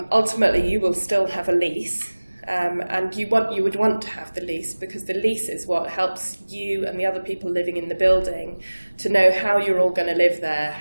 you will still have a lease, and you would want to have the lease because the lease is what helps you and the other people living in the building to know how you're all going to live there,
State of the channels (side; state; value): both; inverted; correlation -1.00